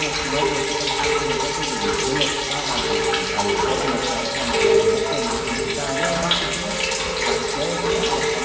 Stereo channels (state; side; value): identical; both; correlation 1.00